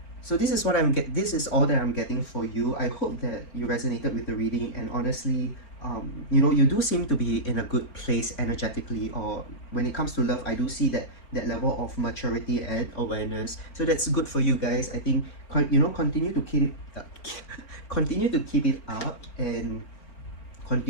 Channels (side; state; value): right; late; 4.4 ms